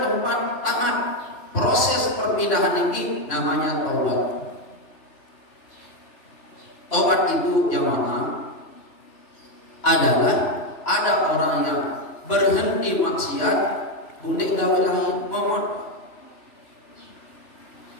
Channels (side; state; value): right; late; 3.5 ms